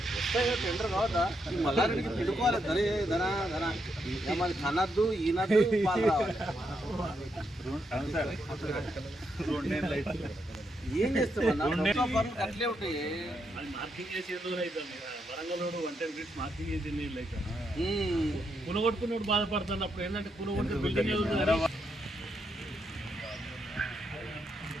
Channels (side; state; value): both; normal; correlation 0.80